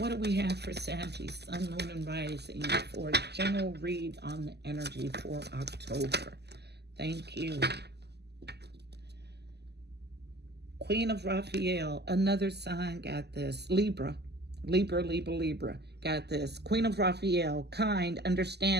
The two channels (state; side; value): late; left; 0.49 ms